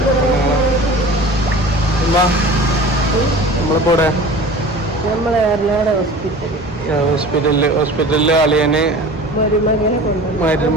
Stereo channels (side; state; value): both; normal; correlation 0.39